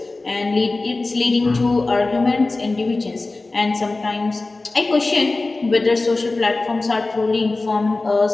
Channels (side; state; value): right; quieter; 3.3 dB